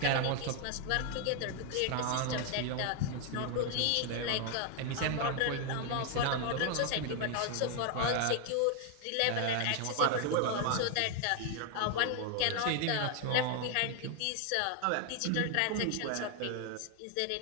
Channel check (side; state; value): both; different; correlation 0.00